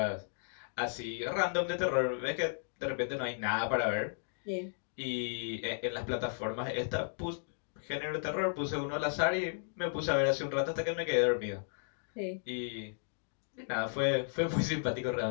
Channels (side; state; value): right; silent; digital silence